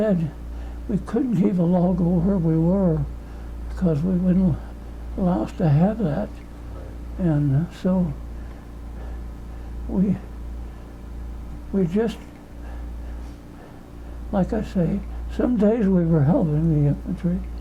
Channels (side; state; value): both; identical; correlation 1.00